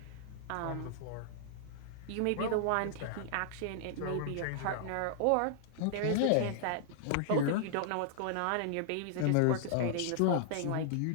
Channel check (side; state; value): both; different; correlation -0.01